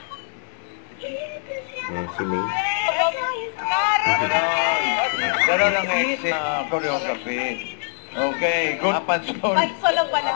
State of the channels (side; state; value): right; silent; digital silence